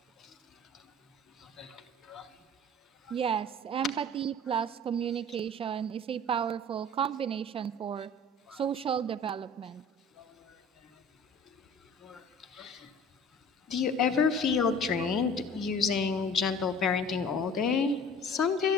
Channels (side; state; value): both; normal; correlation 0.44